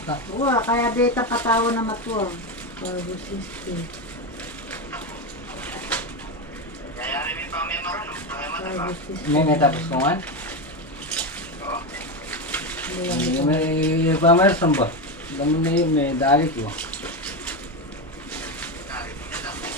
ka. Uwa, kaya beta patawa na matuwa. Carbo system. Carbo system. May tapos ko nga? May pamerson ba? Dami na yun, may dali ko.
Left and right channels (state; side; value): normal; both; correlation 0.14